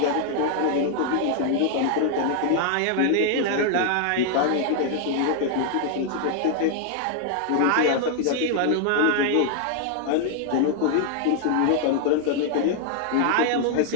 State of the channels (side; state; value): both; different; correlation 0.00